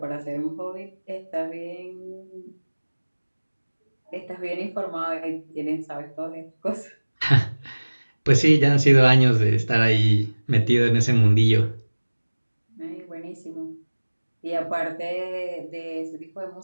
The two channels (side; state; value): both; inverted; correlation -1.00